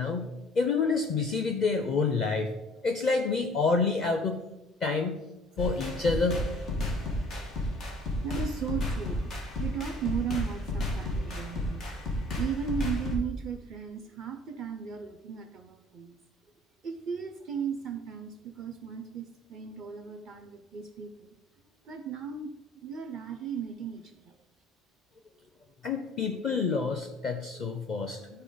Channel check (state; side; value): normal; both; correlation 0.51